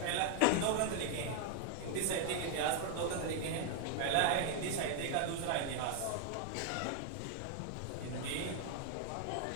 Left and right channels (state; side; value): different; both; correlation 0.00